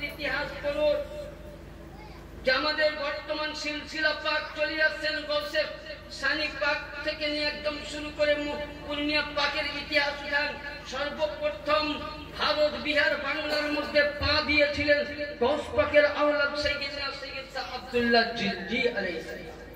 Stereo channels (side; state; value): both; identical; correlation 1.00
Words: ইতিহাস পড়ুন, যে আমাদের বর্তমান সিলসিলা পাক চলে আসছেন গৌসে সানি পাক থেকে নিয়ে একদম শুরু করে পূর্ণিয়া পাকের ইতিহাস উঠান। সর্বপ্রথম ভারত বিহার বাংলার মধ্যে পা দিয়েছিলেন গৌস পাকের আওলাদ সাইয়েদনা সৈয়দ শাহ আব্দুল্লাহ জিলজি আলাইহিস সালাম।